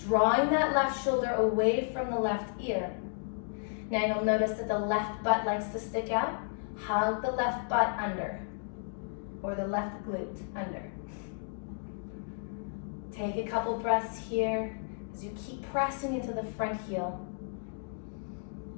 that left shoulder away from the left ear. Now you'll notice that the left butt likes to stick out. Hug the left butt under, or the left glute under. Take a couple breaths here as you keep pressing into the front heel.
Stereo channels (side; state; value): right; silent; digital silence